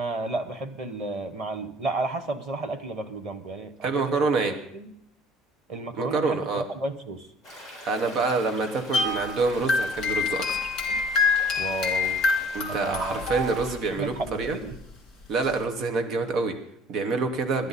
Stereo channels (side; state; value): both; normal; correlation 0.53